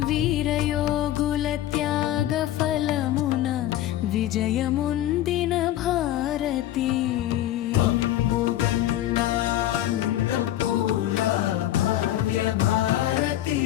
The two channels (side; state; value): right; quieter; 13.3 dB